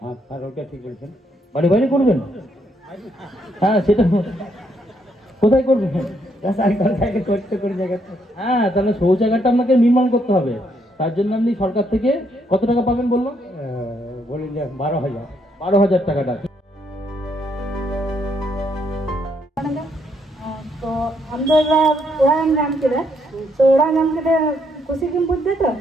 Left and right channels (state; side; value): normal; both; correlation 0.73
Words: হ্যাঁ, ওটা ঠিক বলছেন। বাড়ি বাইরে করবেন? হ্যাঁ, সেটা কোথায় করবেন? হ্যাঁ, তাহলে শৌচাগারটা আপনাকে নির্মাণ করতে হবে। তার জন্য আপনি সরকার থেকে কত টাকা পাবেন বললো? বলি যে 12,000। 12,000 টাকাটা। तो हम लोग उड़ान नाम के तो उड़ान नाम के खुशी की बुद्ध तो